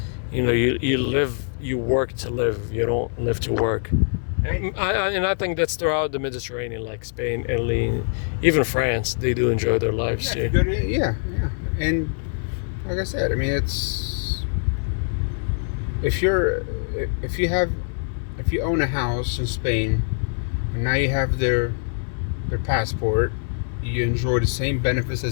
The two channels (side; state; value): right; silent; 59 dB below the other